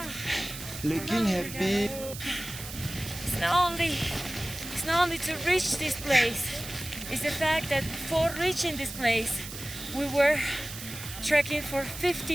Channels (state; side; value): noise; right; hiss, 11 dB below the sound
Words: looking happy. It's not only to reach this place, it's the fact that before reaching this place, we were trekking for